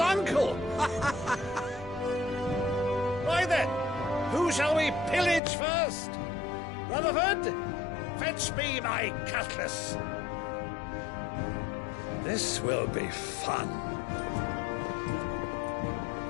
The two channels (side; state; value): right; drops out; at 5.4 s